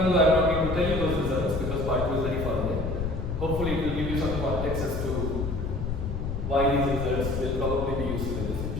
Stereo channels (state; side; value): noise; left; rumble, 4 dB below the sound